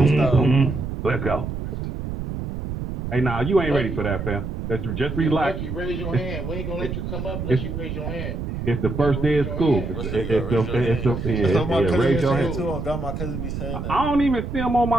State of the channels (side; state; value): right; noise; rumble, 5 dB below the sound